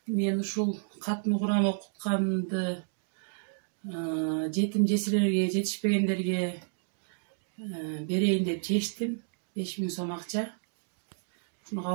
Мен ушул катмы Кур'ан окутканды жетим жесирлерге, жетишпегендерге берейин деп чечтим. 5000 сом акча. Шуну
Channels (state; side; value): silent; left; digital silence